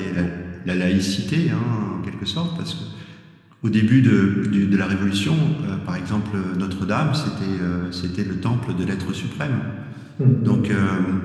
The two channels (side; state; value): both; identical; correlation 1.00